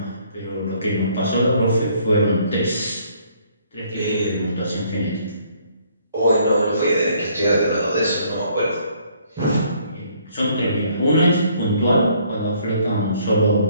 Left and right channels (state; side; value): inverted; both; correlation -0.64